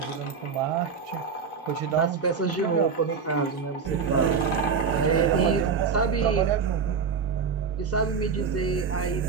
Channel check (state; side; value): quieter; left; 5.8 dB